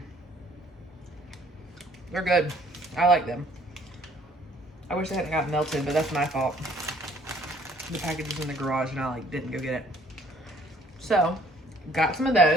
They're good. I like them. I wish they hadn't got melted, but that's my fault. The package was in the garage and I like didn't go get it. So, got some of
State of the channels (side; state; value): both; normal; correlation 0.60